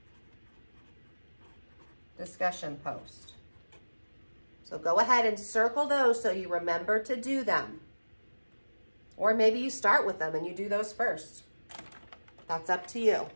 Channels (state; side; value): inverted; both; correlation -1.00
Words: Discussion post. So go ahead and circle those so you remember to do them. Or maybe you start with them and you do those first. That's up to you,